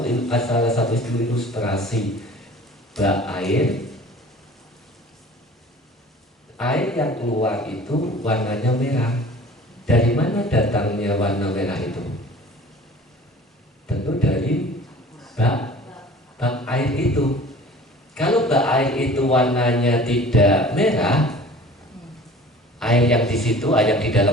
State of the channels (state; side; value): normal; both; correlation 0.45